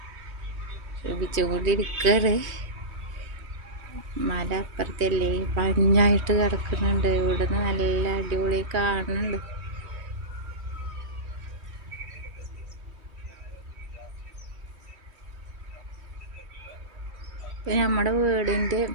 ശ്രമിച്ചുകൊണ്ടിരിക്കുകയാണ്. മല അപ്പുറത്തല്ലേ മഞ്ഞായിട്ട് കിടക്കുന്നുണ്ട്, ഇവിടുന്ന് നല്ല അടിപൊളി കാണുന്നുണ്ട്. നമ്മുടെ വീടിൻ്റെ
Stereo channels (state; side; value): late; left; 3.2 ms